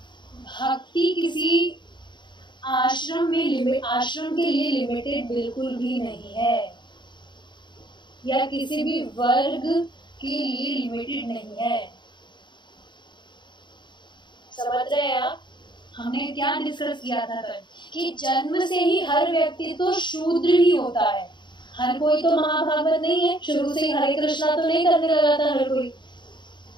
भक्ति किसी आश्रम के लिए लिमिटेड बिल्कुल भी नहीं है, या किसी भी वर्ग के लिए लिमिटेड नहीं है। समझ रहे हैं आप? हमने क्या डिस्कस किया था कल कि जन्म से ही हर व्यक्ति तो शूद्र ही होता है। हर कोई तो महाभागवत नहीं है, शुरू से ही हरे कृष्णा तो नहीं करने लगा था हर कोई,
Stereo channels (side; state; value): right; late; 0.22 ms